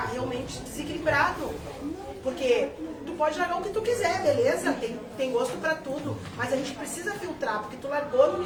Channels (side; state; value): both; identical; correlation 1.00